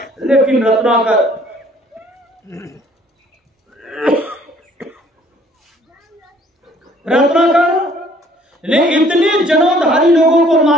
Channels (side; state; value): both; normal; correlation 0.58